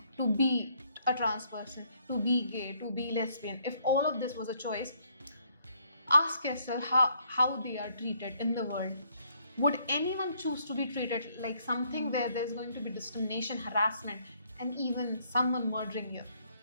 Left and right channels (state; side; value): inverted; both; correlation -0.69